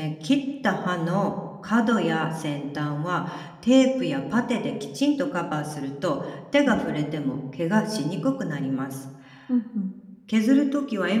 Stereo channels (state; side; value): identical; both; correlation 1.00